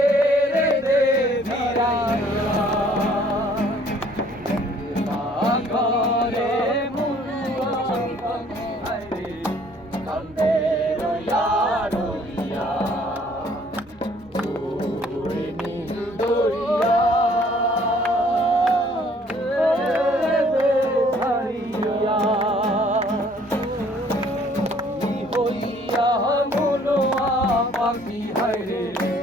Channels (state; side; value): normal; both; correlation 0.59